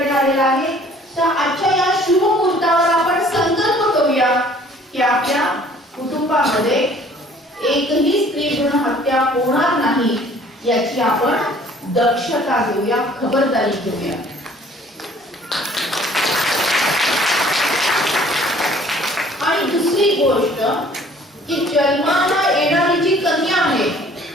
आलेला आहे. तर आजच्या या शुभ मुहूर्तावर आपण संकल्प करूया की आपल्या कुटुंबामध्ये एकही स्त्री भ्रूण हत्या होणार नाही याची आपण दक्षता घेऊया, खबरदारी घेऊया. आणि दुसरी गोष्ट की जन्माला येणारी जी कन्या आहे,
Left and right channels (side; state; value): both; normal; correlation 0.55